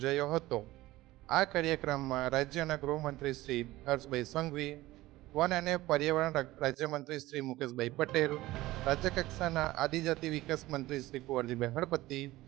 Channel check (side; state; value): left; quieter; 17.6 dB